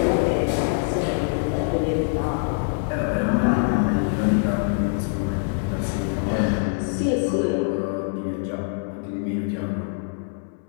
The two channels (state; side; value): silent; right; 63 dB below the other